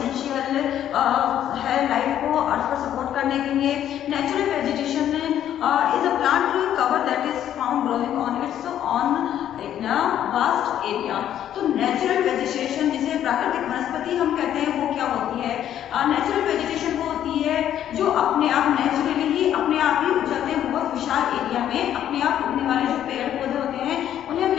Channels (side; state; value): right; quieter; 10.8 dB